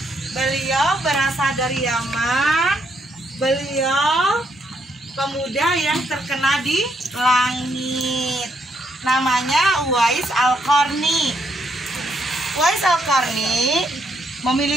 Beliau berasal dari Yaman. Beliau pemuda yang terkenal di langit. Namanya Uwais Al-Qarni. Uwais Al-Qarni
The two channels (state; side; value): normal; both; correlation 0.75